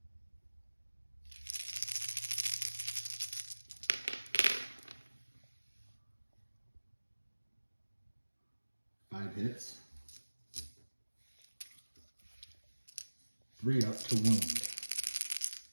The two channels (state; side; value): inverted; both; correlation -1.00